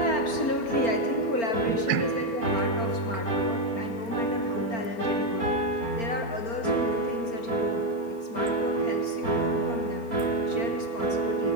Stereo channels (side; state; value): right; late; 4.4 ms